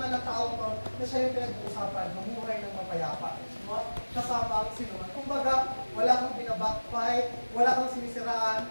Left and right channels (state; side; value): inverted; both; correlation -1.00